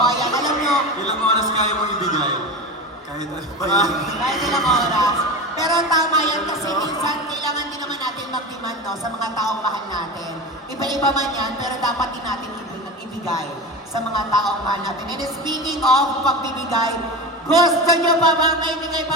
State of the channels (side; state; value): both; normal; correlation 0.26